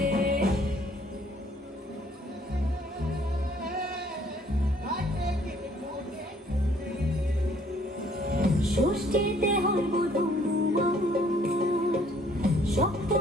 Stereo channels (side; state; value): both; normal; correlation 0.61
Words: ষষ্ঠীতে হয় বধূ